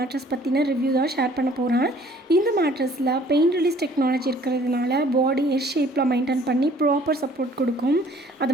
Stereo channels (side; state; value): both; normal; correlation 0.56